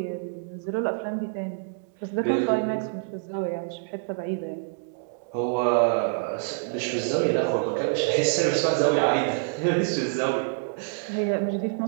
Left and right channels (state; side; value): silent; left; 61 dB below the other